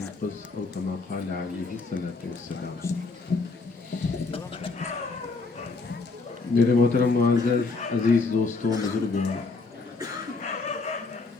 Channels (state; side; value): quieter; right; 4.0 dB